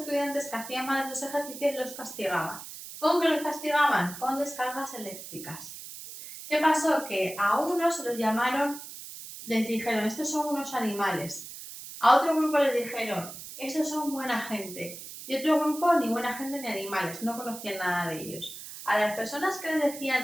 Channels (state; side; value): noise; right; hiss, 12 dB below the sound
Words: que hacían mal esos ejercicios los castigaban. ¿Con qué los castigaban? Con descargas eléctricas. ¿Qué pasó? Que a unos se los llamaron, les dijeron, estos son unos animales. A otro grupo les dijeron, estos son buena gente. Y otro grupo, ni buena gente ni animales, no conocían nada de ellos. A las personas que les